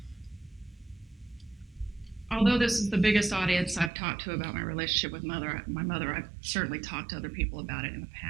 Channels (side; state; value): left; drops out; at 3.9 s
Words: Although this is the biggest audience I've talked to about my relationship with my mother, I've certainly talked to other people about it in the